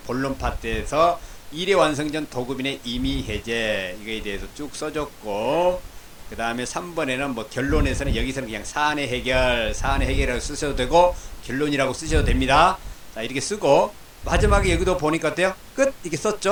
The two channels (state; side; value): identical; both; correlation 1.00